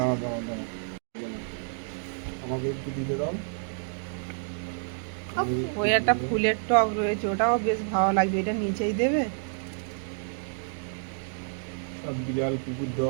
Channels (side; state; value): left; silent; digital silence